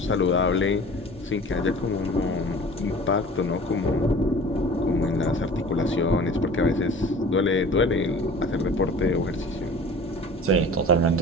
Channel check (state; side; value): normal; both; correlation 0.42